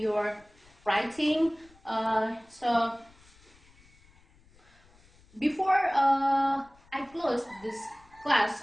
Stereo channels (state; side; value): noise; left; rumble, 29 dB below the sound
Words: your writing. So before I close this class